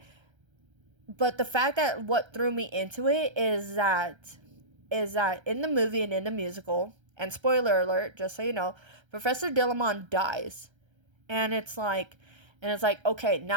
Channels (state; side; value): late; left; 1.3 ms